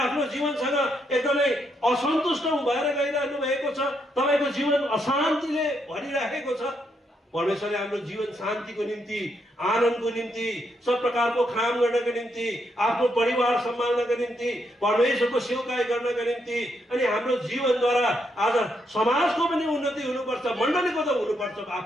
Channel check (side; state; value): both; normal; correlation 0.78